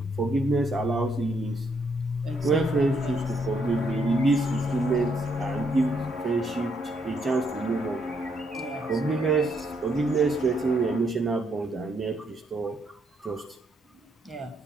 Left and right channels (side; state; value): both; normal; correlation 0.73